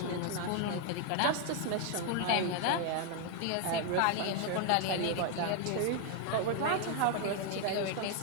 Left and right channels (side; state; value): both; different; correlation 0.00